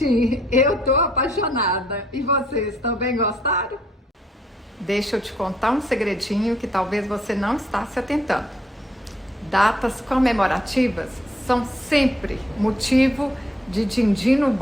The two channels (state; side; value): normal; both; correlation 0.69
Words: Eu tô apaixonada. E vocês também gostaram? Deixa eu te contar um segredinho que talvez você não está se atentando. Datas comemorativas são sempre motivo de din-din no